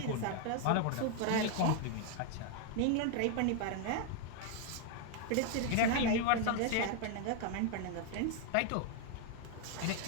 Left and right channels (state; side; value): different; both; correlation 0.00